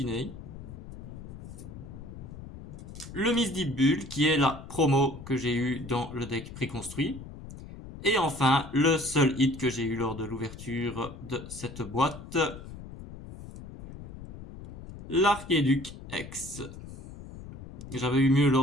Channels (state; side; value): noise; left; rumble, 13 dB below the sound